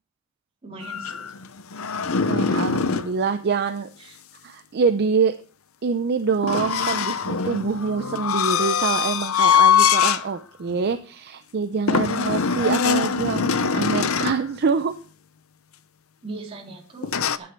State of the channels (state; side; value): normal; both; correlation 0.10